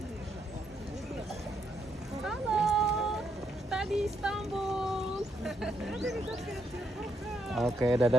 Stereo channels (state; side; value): normal; both; correlation 0.77